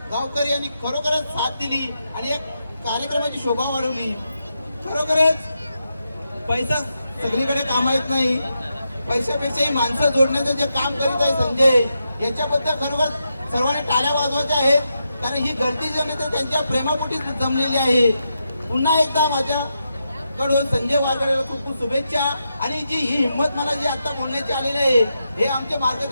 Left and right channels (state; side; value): inverted; both; correlation -0.85